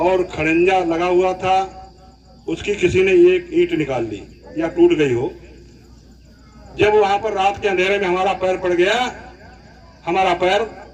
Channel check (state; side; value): identical; both; correlation 1.00